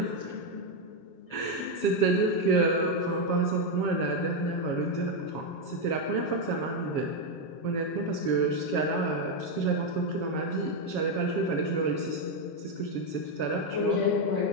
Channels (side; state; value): right; late; 7.3 ms